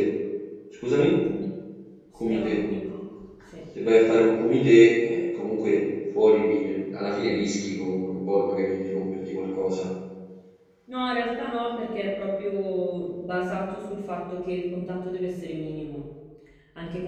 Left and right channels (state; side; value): identical; both; correlation 1.00